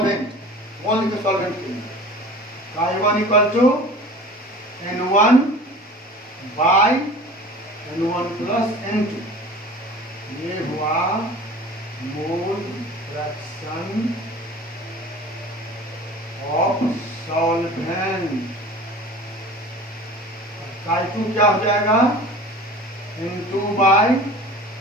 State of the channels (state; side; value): normal; both; correlation 0.40